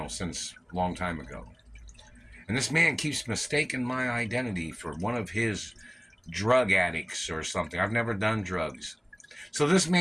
since a long time ago. And this man keeps mistaking my identity for one of his drug addicts or something. I've never done drugs. So this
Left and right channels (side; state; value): both; identical; correlation 1.00